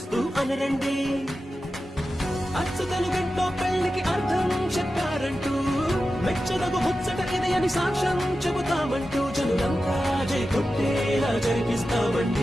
అనరండి. అచ్చుతలు గంటో పెళ్లికి అర్థం చెప్పారంటూ, మెచ్చదగు ముచ్చట ఇది అని సాక్ష్యం చెబుతామంటూ, జనులంతా జై కొట్టేలా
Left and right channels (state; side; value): normal; both; correlation 0.92